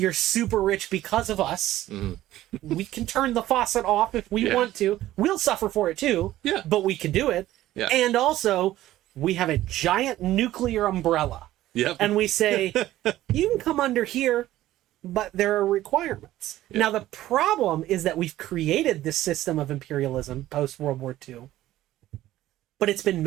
super rich because of us. Mm-hmm. We can turn the faucet off if we want to. We'll suffer for it too. Yeah. But we can do it. Yeah. And also, we have a giant nuclear umbrella. Yep. And we say, you can come under here, but there are requirements. Yep. Now, the problem is that we've created this system of imperialism post-World War II, but it's been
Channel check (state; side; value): quieter; left; 14.7 dB